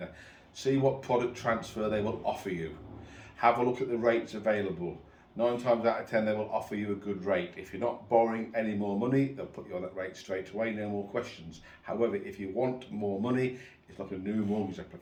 See what product transfer they will offer you. Have a look at the rates available. 9 times out of 10 they will offer you a good rate. If you're not borrowing any more money, they'll put you on that rate straight away, no more questions. However, if you want more money, it's like a new mortgage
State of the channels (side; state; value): both; identical; correlation 1.00